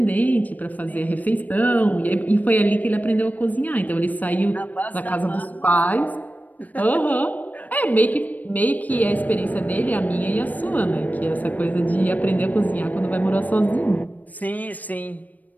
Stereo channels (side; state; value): right; late; 0.079 ms